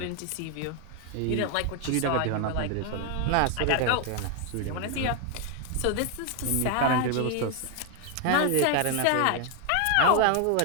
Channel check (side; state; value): both; different; correlation 0.01